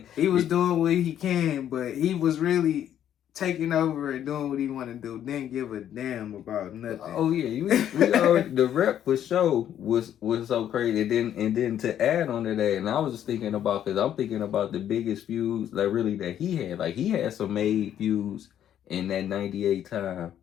he was doing what he can, but he was really taking over and doing what he wanted to do. Didn't give a damn about nothing. Oh yeah, we already, the rep for show was so crazy. And then to add on to that, and I was just thinking about, because I'm thinking about the biggest feuds that he had. Like, he had some made feuds in that '98 time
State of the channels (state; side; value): quieter; right; 10.4 dB